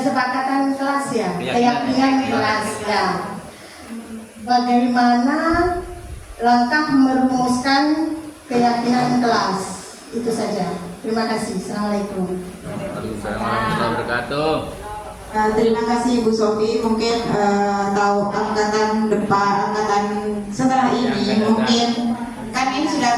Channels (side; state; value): both; identical; correlation 1.00